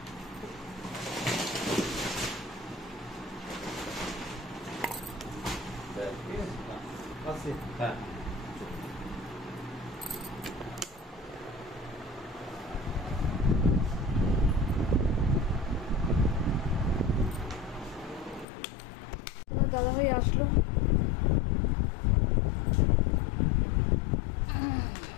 হ্যাঁ দাদাভাই আসলো,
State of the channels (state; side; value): drops out; right; at 18.4 s